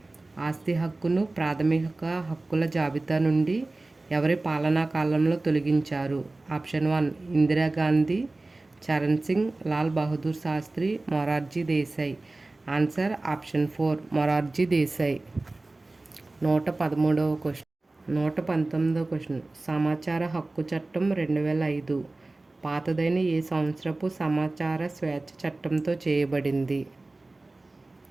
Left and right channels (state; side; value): quieter; left; 3.1 dB